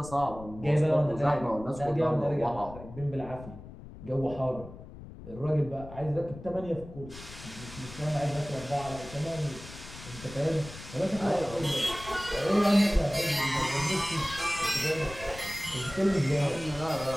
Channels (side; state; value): left; noise; rumble, 15 dB below the sound